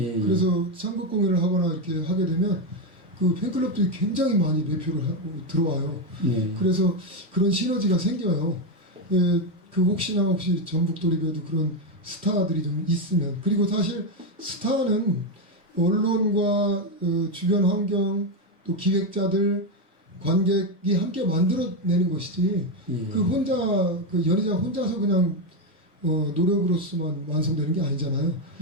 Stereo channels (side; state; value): both; normal; correlation 0.07